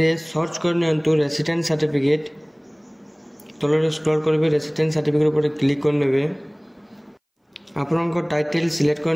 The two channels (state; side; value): identical; both; correlation 1.00